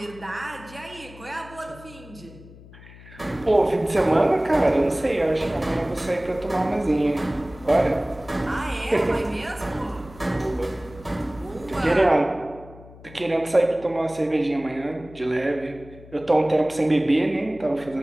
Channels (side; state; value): left; noise; hum, 20 dB below the sound